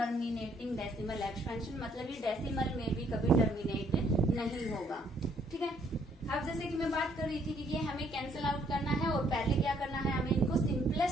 डेसिमल एक्सपेंशन, मतलब ये डेसिमल में भी कभी टर्मिनेट नहीं होगा, ठीक है। अब जैसे कि मैं बात कर रही थी कि ये हमें कैंसिल आउट करना है और पहले क्या करना है हमें इनको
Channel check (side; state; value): both; normal; correlation 0.67